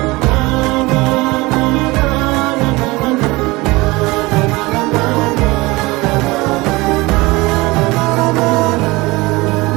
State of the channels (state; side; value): quieter; left; 22.2 dB